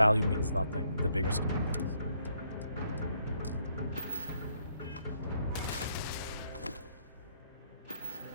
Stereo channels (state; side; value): inverted; both; correlation -0.71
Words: means nothing in the bigger scheme of things.